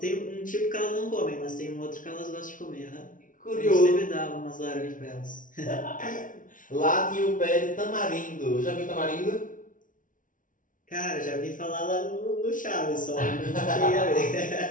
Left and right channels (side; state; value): right; late; 0.38 ms